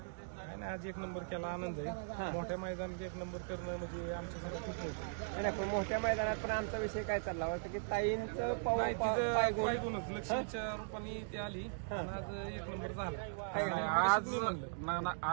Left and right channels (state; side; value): silent; left; digital silence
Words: आज 1 नंबर केला, आनंद आहे. मोठ्या मैदानात 1 नंबर करणं म्हणजे आमच्यासाठी खूप होतं. मोठ्या मैदानात पण आमचा विषय काय चालला होता की ताईंचं पायगुणच लक्ष्मीच्या रूपाने ती आली आणि आज 1 नंबर झाला.